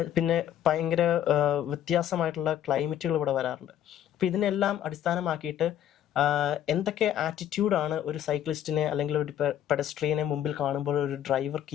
പിന്നെ ഭയങ്കര വ്യത്യാസമായിട്ടുള്ള ക്ലൈമറ്റുകൾ ഇവിടെ വരാറുണ്ട്. അപ്പോൾ ഇതിനെല്ലാം അടിസ്ഥാനമാക്കിയിട്ട് എന്തൊക്കെ ആറ്റിറ്റ്യൂഡാണ് ഒരു സൈക്ലിസ്റ്റിനെ അല്ലെങ്കിൽ ഒരു പെഡസ്ട്രിയനെ മുമ്പിൽ കാണുമ്പോൾ ഒരു ഡ്രൈവർ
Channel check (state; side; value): quieter; right; 10.9 dB